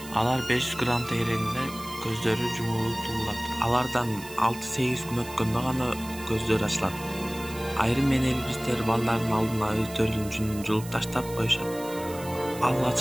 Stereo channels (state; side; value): noise; right; hiss, 15 dB below the sound